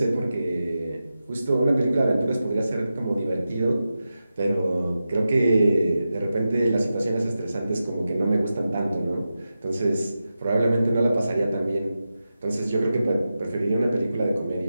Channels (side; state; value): both; inverted; correlation -0.91